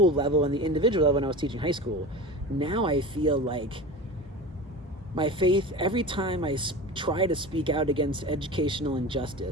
level and the individual level when I was teaching high school. Now I feel like my faith, every time I try to speak out against educational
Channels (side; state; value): both; normal; correlation 0.31